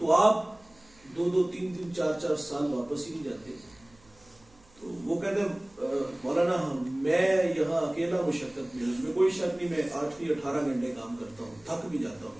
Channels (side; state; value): right; noise; hum, 28 dB below the sound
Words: آپ 2-2, 3-3, 4-4 سال واپس ہی نہیں جاتے؟ تو وہ کہتے ہیں مولانا میں یہاں اکیلا مشقت میں, اس میں کوئی شک نہیں, میں 8-18 گھنٹے کام کرتا ہوں, تھک بھی جاتا